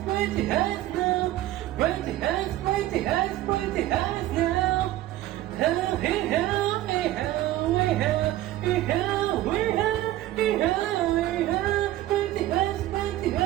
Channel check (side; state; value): left; quieter; 14.8 dB